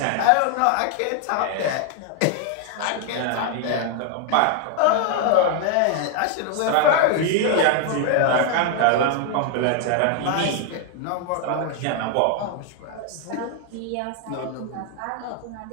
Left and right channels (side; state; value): both; different; correlation 0.00